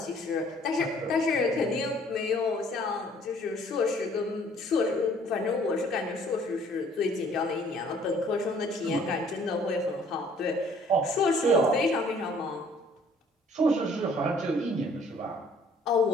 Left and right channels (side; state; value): both; normal; correlation 0.58